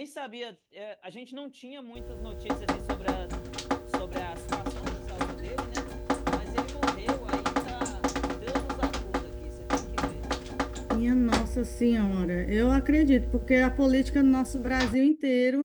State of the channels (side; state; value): both; identical; correlation 1.00